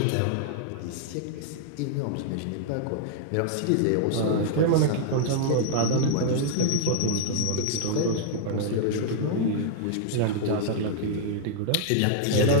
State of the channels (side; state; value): both; different; correlation -0.01